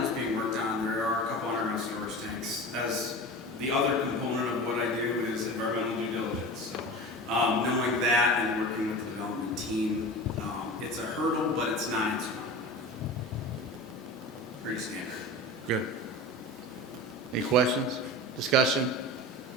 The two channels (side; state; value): both; normal; correlation 0.32